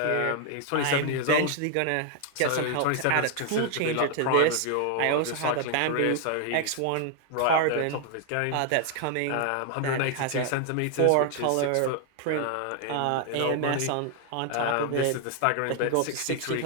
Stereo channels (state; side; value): different; both; correlation 0.00